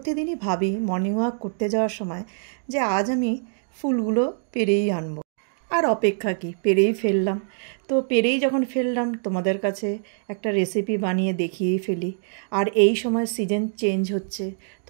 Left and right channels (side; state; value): left; silent; digital silence